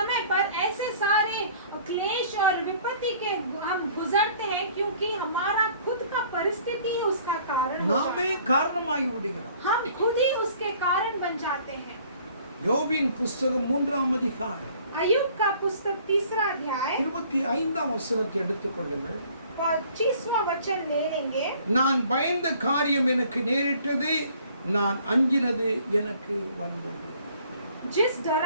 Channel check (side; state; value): both; inverted; correlation -0.55